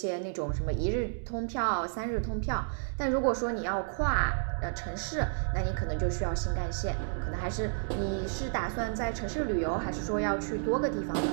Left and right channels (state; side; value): silent; left; digital silence